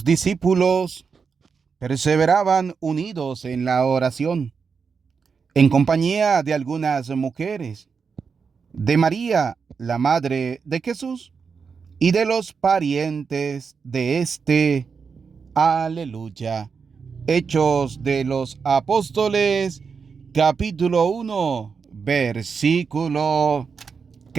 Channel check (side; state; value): left; quieter; 5.6 dB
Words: discípulos perseveraban unidos en la oración, en compañía de algunas mujeres, de María, la madre de Jesús, y de los parientes de éste. Aleluya. Hechos de los Apóstoles, capítulo 1, versículo